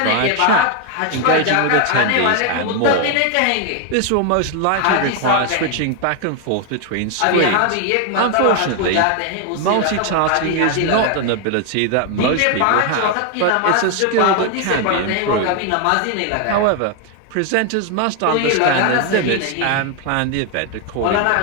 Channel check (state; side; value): different; both; correlation 0.01